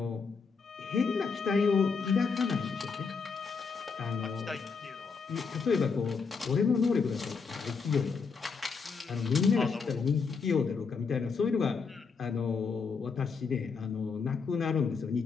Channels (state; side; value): quieter; right; 5.2 dB